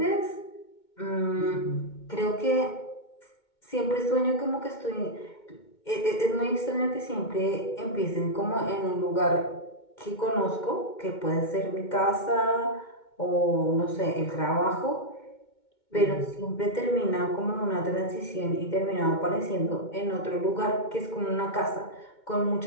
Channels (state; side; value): late; right; 2.2 ms